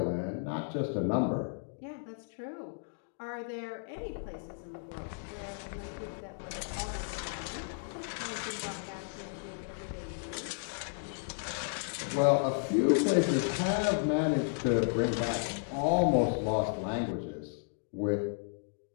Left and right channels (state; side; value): silent; right; digital silence